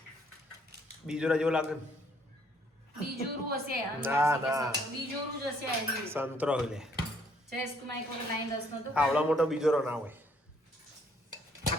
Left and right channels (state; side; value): normal; both; correlation 0.65